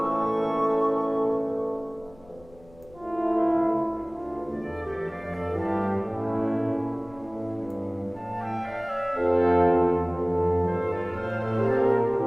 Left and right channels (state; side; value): noise; left; rumble, 25 dB below the sound